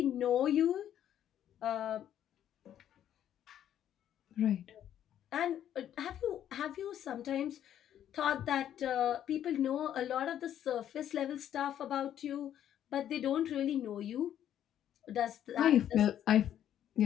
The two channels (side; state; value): right; quieter; 10.6 dB